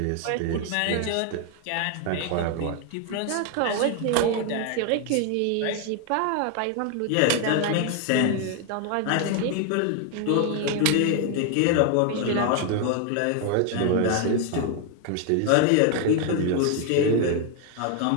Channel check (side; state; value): both; different; correlation 0.00